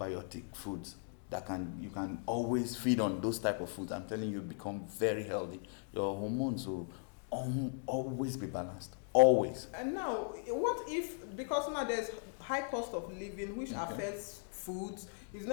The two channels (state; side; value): silent; right; 52 dB below the other